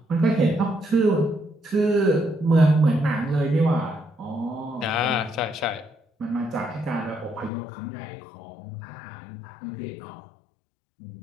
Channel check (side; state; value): right; drops out; at 7.5 s